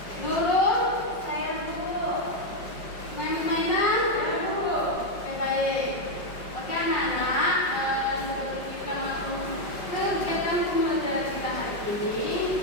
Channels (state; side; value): late; right; 5.3 ms